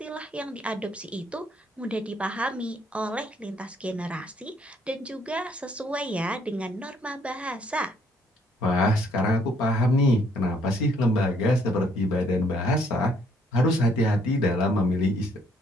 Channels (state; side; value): normal; both; correlation 0.66